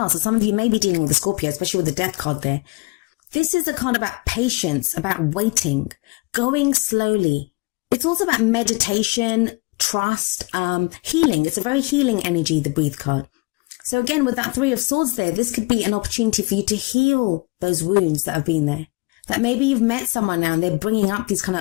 So some of you may be dealing with a Scorpio, especially with the Death card there. This is a card about patience, about waiting, going slowly. It's also about meditation, trust, healing. It's a very healing energy, the breathe card. So again, with that 3 of swords there, this could be an opportunity for you to heal those wounds that have been there. That maybe you've met someone now and they're bringing up these kind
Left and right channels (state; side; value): quieter; right; 27.8 dB